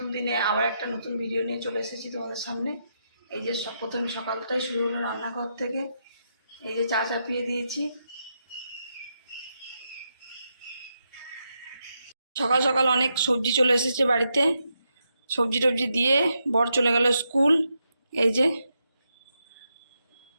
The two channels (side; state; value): both; inverted; correlation -0.83